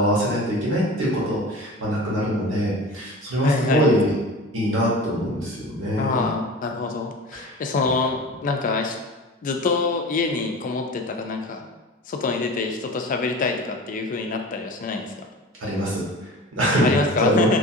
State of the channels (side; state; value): both; normal; correlation 0.36